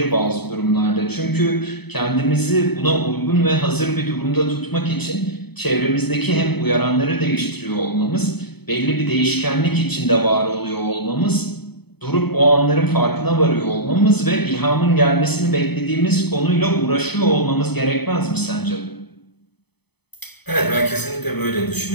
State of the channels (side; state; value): right; late; 0.98 ms